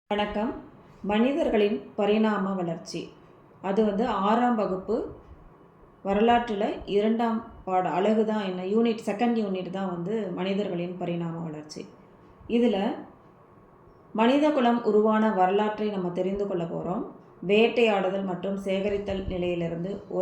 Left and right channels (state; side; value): identical; both; correlation 1.00